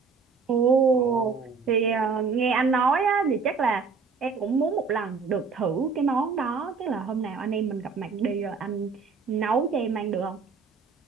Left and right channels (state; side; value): quieter; left; 5.1 dB